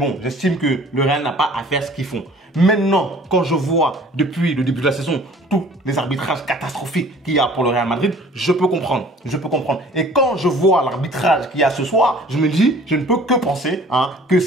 j'estime que le Real n'a pas à faire ce qu'ils font. Maintenant, quand je vois depuis le début de la saison tous les arbitrages catastrophiques qu'il y a pour le Real Madrid, je peux comprendre. Et quand je vois l'arbitrage qu'il y a ce soir, je me dis, je ne peux que penser que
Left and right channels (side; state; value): both; normal; correlation 0.51